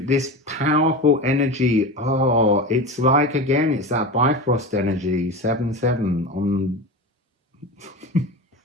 this powerful energy, oh, it's like, again, it's that Bifrost energy, 7-7 on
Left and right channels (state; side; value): normal; both; correlation 0.26